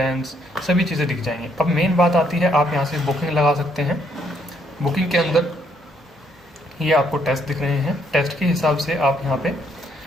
सभी चीज़ें दिख जाएंगी। अब मेन बात आती है, आप यहाँ से बुकिंग लगा सकते हैं। बुकिंग के अंदर ये आपको टेस्ट दिख रहे हैं, टेस्ट के हिसाब से आप यहाँ पे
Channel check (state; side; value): normal; both; correlation 0.70